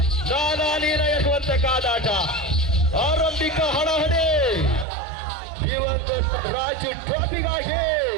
ನಾನಾ ನೀರ ಎನ್ನುವಂತ ಕಾದಾಟ. ಆರಂಭಿಕ ಹಣಹಣಿ ದಿವಂಗತ ರಾಜು ಟ್ರೋಫಿಗಾಗಿ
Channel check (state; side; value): drops out; left; at 4.9 s